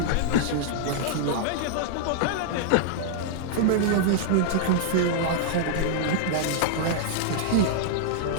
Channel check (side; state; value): both; different; correlation -0.01